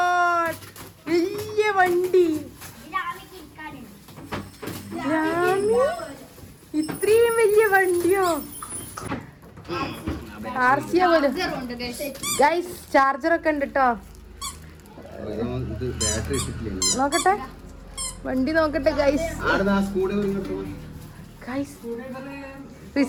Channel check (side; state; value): both; identical; correlation 1.00